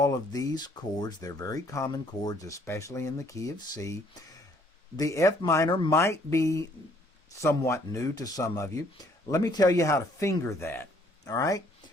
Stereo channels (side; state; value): both; normal; correlation 0.63